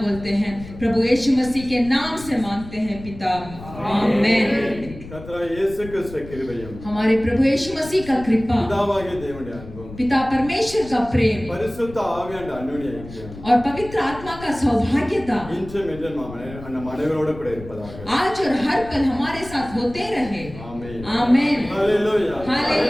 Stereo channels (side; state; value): left; noise; rumble, 15 dB below the sound